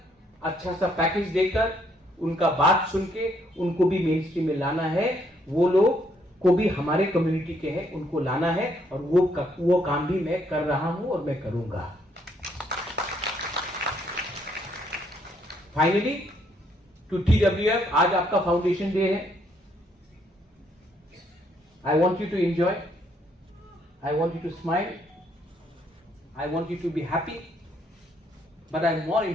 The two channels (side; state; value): both; normal; correlation 0.70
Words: अच्छा सा पैकेज देकर, उनका बात सुन के उनको भी मेन स्ट्रीम में लाना है। वो लोग को भी हमारे कम्युनिटी के हैं, उनको लाना है, और वो काम भी मैं कर रहा हूं और मैं करूंगा। फाइनली टू TWF, आज आपका फाउंडेशन डे है। I want you to enjoy, I want you to smile, I want you to be happy, but I more